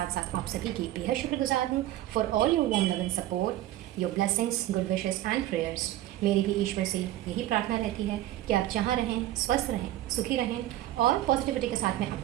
साथ आप सभी की बेहद शुक्रगुजार हूँ for all your warm love and support, your blessings, good wishes and prayers. मेरी भी ईश्वर से यही प्रार्थना रहती है कि आप जहाँ रहें, स्वस्थ रहें, सुखी रहें और पॉजिटिविटी के साथ में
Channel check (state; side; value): quieter; left; 14.3 dB